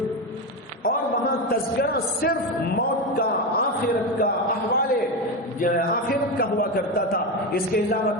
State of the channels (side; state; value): both; normal; correlation 0.15